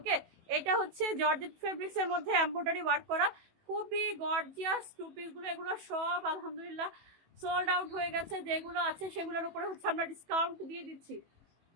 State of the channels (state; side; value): late; left; 18 ms